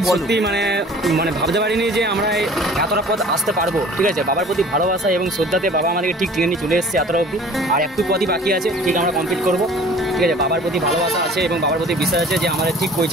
বলো। মানে ভাবতে পারিনি যে আমরা এতটা পথ আসতে পারবো। ঠিক আছে, বাবার প্রতি ভালোবাসা এবং শ্রদ্ধাতে বাবা আমাদেরকে ঠিক টেনে নিয়ে চলে এসেছে এতটা অবধি। আর একটু পথই বাকি আছে, ঠিক আমরা কমপ্লিট করবো। ঠিক আছে, বাবার প্রতি ভালোবাসা আছে এবং বাবার প্রতি বিশ্বাস আছে যে আমাদের ঠিক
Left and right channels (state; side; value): normal; both; correlation 0.48